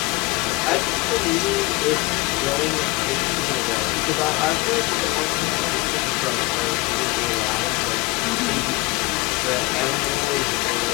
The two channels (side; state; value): right; quieter; 23.6 dB